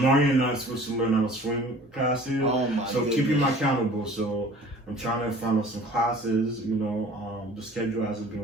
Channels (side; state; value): both; normal; correlation 0.47